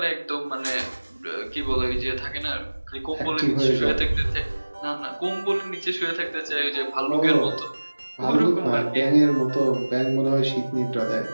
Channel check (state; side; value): inverted; both; correlation -1.00